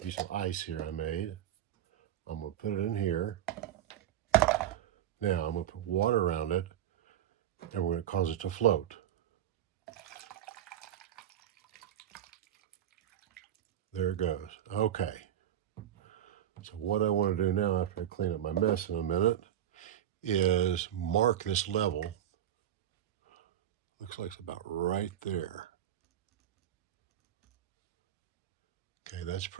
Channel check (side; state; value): left; quieter; 11.1 dB